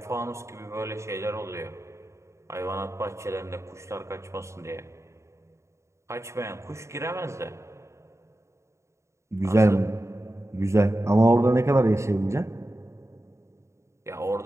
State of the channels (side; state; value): left; late; 0.14 ms